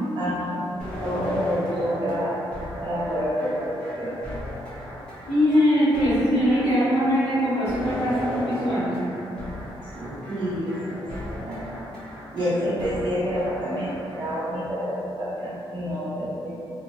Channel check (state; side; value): normal; both; correlation 0.74